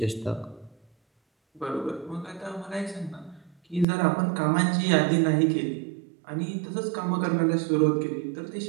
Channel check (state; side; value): drops out; left; at 3.9 s